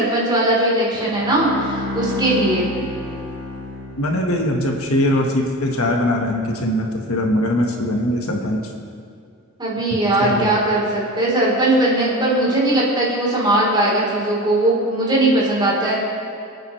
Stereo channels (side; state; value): both; normal; correlation 0.30